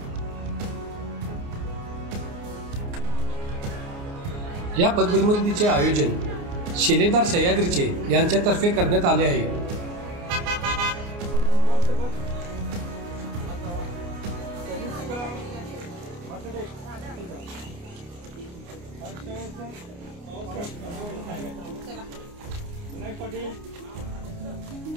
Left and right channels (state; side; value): late; left; 29 ms